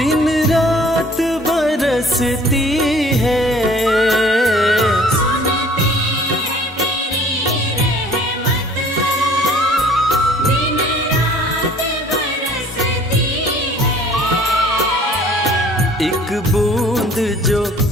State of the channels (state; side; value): normal; both; correlation 0.53